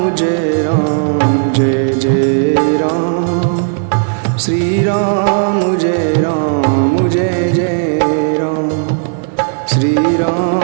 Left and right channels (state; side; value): silent; left; digital silence